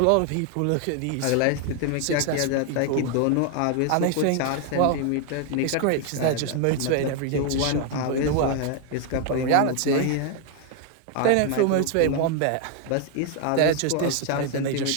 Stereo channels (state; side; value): different; both; correlation 0.01